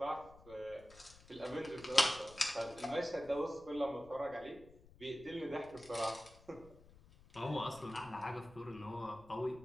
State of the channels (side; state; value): left; noise; rumble, 22 dB below the sound